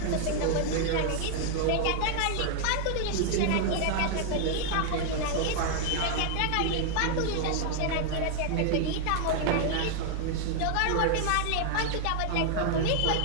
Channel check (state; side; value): different; both; correlation 0.00